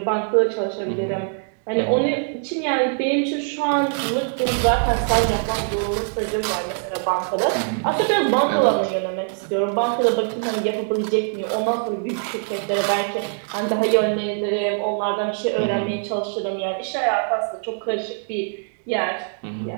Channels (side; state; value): left; silent; 60 dB below the other